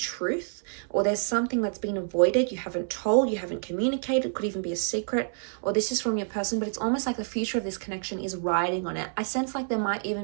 or there's something that's been avoided, you haven't told, you haven't communicated, could even be a secret, or this is from your person, but it's almost like the future of this connection is riding on it. I sense like there might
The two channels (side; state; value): left; silent; 59 dB below the other